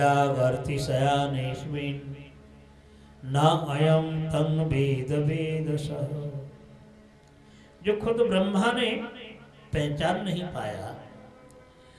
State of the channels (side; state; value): both; identical; correlation 1.00